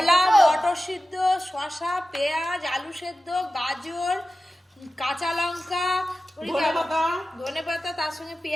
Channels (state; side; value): normal; both; correlation 0.94